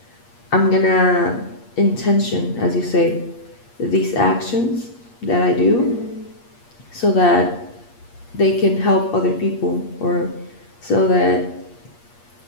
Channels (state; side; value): late; right; 8.4 ms